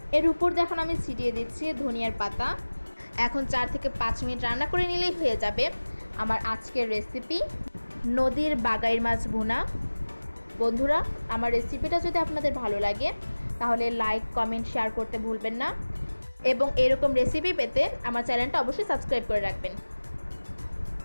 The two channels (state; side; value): inverted; both; correlation -1.00